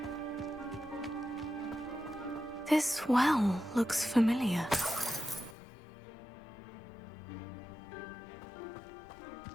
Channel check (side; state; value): right; drops out; at 5.6 s